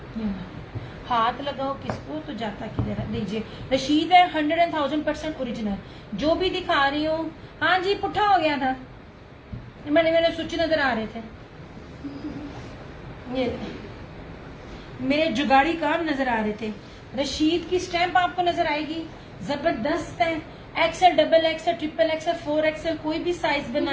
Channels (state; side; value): identical; both; correlation 1.00